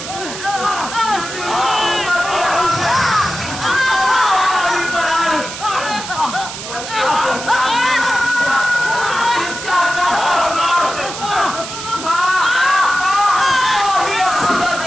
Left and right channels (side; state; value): right; noise; hiss, 9 dB below the sound